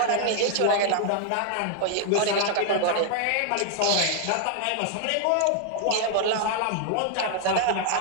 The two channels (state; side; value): different; both; correlation 0.00